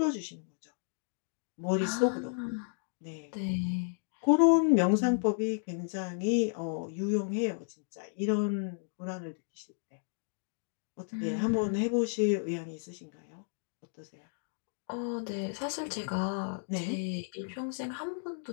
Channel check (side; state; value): right; silent; digital silence